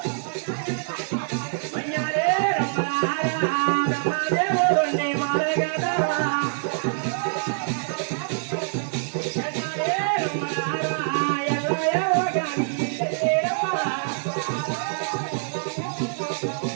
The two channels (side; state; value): left; silent; 57 dB below the other